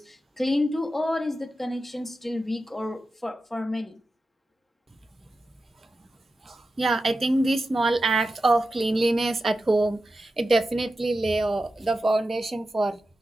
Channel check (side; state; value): both; normal; correlation 0.91